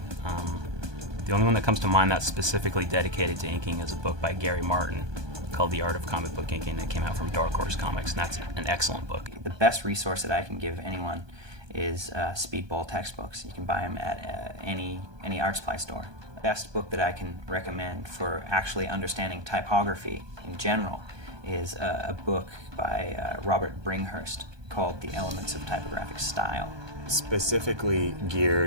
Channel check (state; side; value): late; left; 1.2 ms